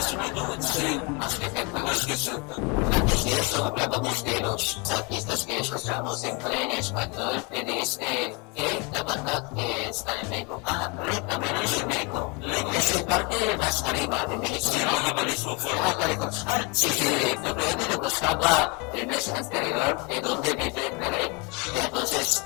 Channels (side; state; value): right; quieter; 26.0 dB